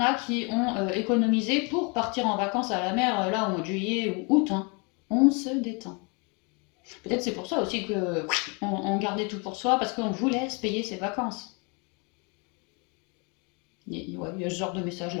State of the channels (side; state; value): right; quieter; 32.3 dB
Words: qui ont économisé pour partir en vacances à la mer, là, au mois de juillet ou août. Hein. On se détend. Peut-être c'est pour ça aussi que on gardait tout pour soi, parce qu'on voulait se payer ses vacances. Ouais, il y a ce genre de message